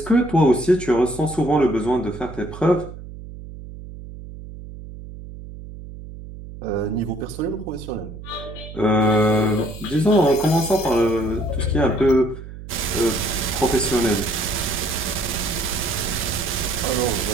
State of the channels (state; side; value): noise; right; hum, 13 dB below the sound